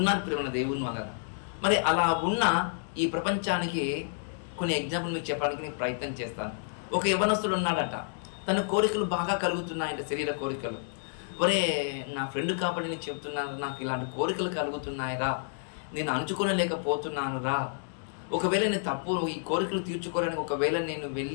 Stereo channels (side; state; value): right; silent; digital silence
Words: ప్రేమ దేవుని వలన. మరి అలా ఉన్న ఈ ప్రపంచానికి కొన్ని ఎగ్జాంపుల్ మీకు చెప్పడానికి నేను ప్రయత్నం చేస్తాను. ఒక యవ్వనస్తుడు ఉన్నాడట, తన కోరికలు బాగా కలుగుతున్నాయంట, శరీర కోరికలు. ఒరే నా ఫ్రెండ్ కాబట్టి నేను చెప్తున్నాను, నాకు ఇలాంటి కోరికలు కలుగుతున్నాయిరా, నేను అంచుకోలేకపోతున్నాను రా. ఒకవేళ నేను తప్పు, ఈ కోరికలు తీర్చుకోవడానికి ఒకవేళ నేను